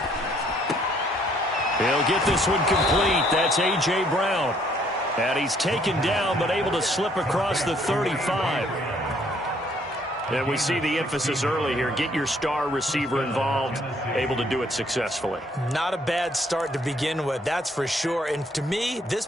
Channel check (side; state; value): both; normal; correlation 0.65